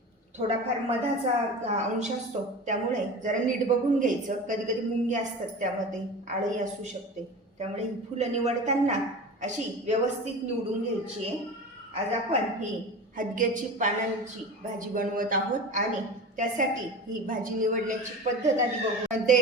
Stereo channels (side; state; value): both; normal; correlation 0.32